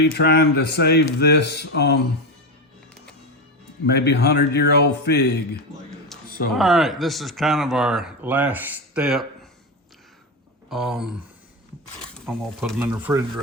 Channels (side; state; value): both; normal; correlation 0.15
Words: trying to save this maybe 100-year-old fig. So all right, this is kind of our last step. I'm gonna put them in the